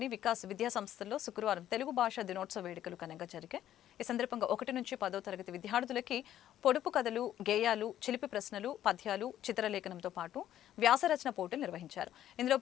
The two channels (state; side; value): quieter; right; 11.7 dB